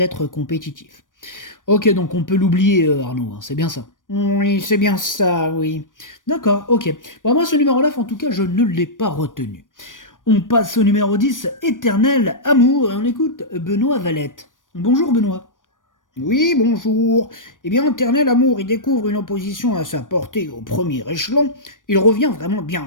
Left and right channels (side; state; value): right; late; 0.88 ms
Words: compétitif. Ok, donc on peut l'oublier Arnaud, hein, c'est bien ça. Oui, c'est bien ça, oui. D'accord, ok. Bah, moi ce numéro 9, en tout cas, je ne l'ai pas retenu. On passe au numéro 10, Éternel Amour, et on écoute Benoît Valette. Bonjour Benoît. Oui, bonjour. Eh bien, Éternel Amour, il découvre une opposition à sa portée au premier échelon. Il revient vraiment bien,